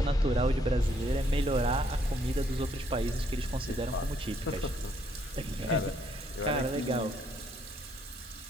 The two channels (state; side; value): normal; both; correlation 0.69